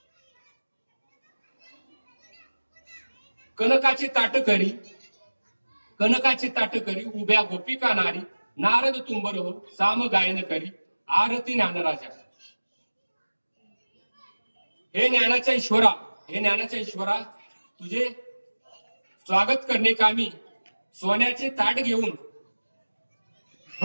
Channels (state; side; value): inverted; both; correlation -1.00